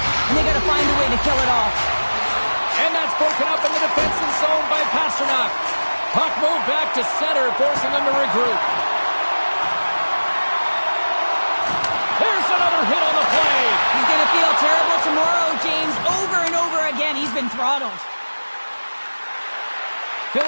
they got to find a way to kill it off. And that's broken up in the defensive zone by Pasternak. Puck moved back to center, forcing them to regroup. There's another hit on the play. He's going to feel terrible tomorrow, James. Over and over again, he's been throttled.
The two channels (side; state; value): both; inverted; correlation -1.00